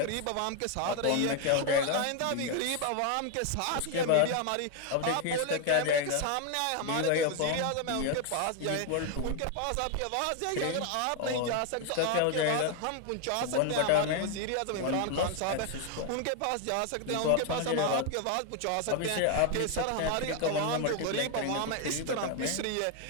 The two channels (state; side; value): different; both; correlation 0.01